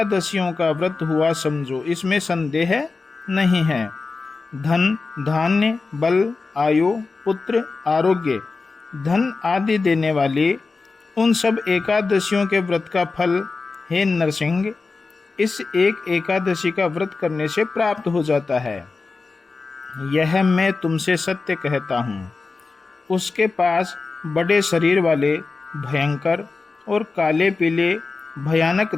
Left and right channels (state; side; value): quieter; right; 4.1 dB